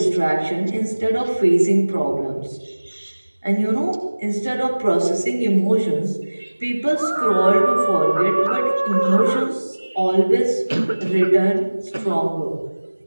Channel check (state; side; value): inverted; both; correlation -1.00